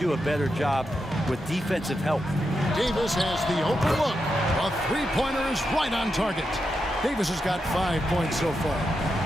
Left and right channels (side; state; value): both; normal; correlation 0.86